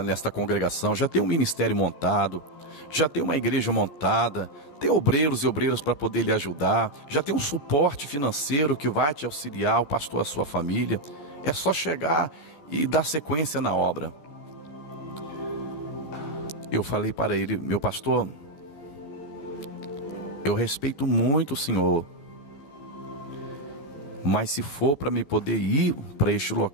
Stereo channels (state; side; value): late; right; 14 ms